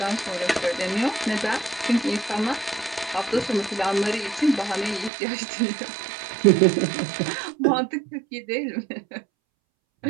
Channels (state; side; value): drops out; left; at 5.1 s